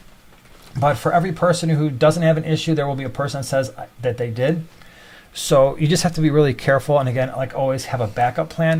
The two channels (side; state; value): both; identical; correlation 1.00